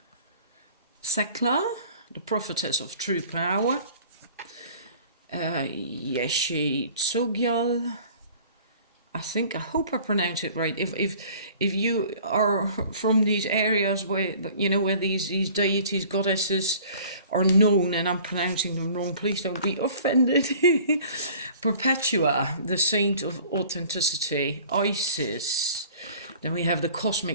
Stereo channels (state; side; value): inverted; both; correlation -0.49